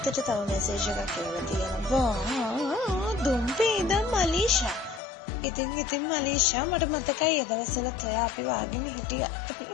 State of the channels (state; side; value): drops out; right; at 5.0 s